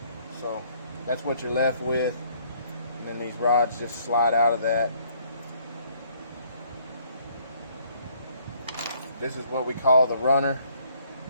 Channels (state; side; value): inverted; both; correlation -0.63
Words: So that's what you're left with, and then these rods just slide out of that. This is what we call the runner,